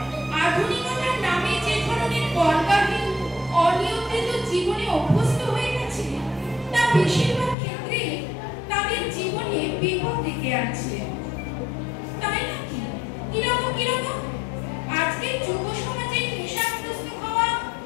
আধুনিকতার নামে যে ধরনের বলবাহী অনিয়ম বেশিরভাগ ক্ষেত্রে তাদের জীবনে বিপদ ডেকে আছে। তাই নাকি? কিরকম কিরকম? আজকে যুব সমাজে নেশাগ্রস্ত হওয়া,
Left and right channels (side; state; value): right; drops out; at 7.6 s